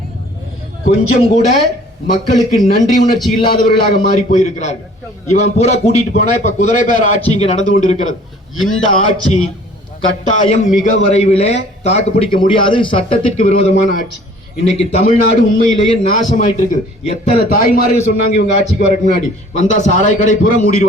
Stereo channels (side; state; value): both; normal; correlation 0.52